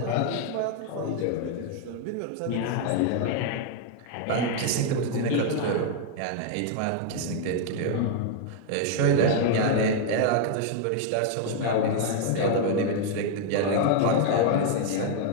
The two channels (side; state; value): both; different; correlation 0.00